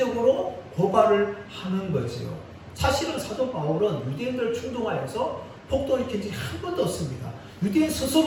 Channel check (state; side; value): identical; both; correlation 1.00